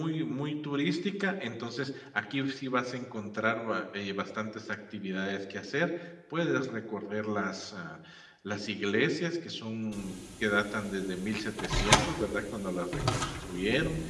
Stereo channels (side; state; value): both; identical; correlation 1.00